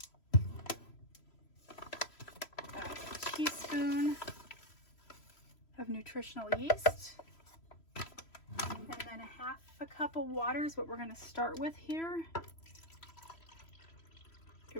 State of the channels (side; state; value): right; late; 3.0 ms